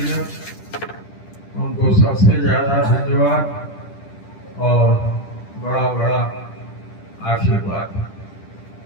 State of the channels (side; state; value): right; late; 10 ms